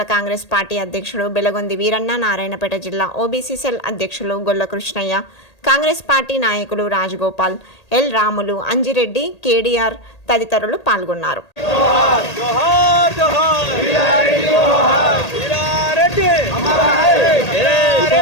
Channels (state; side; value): late; right; 1.8 ms